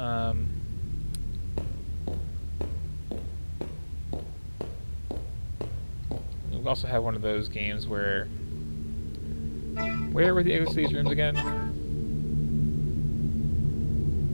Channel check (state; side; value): inverted; both; correlation -1.00